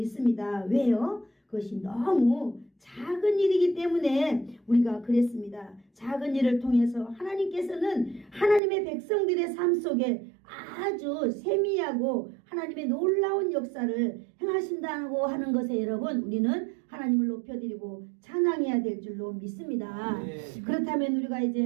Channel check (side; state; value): left; drops out; at 8.6 s